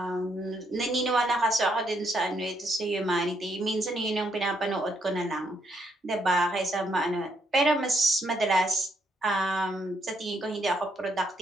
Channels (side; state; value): both; normal; correlation 0.74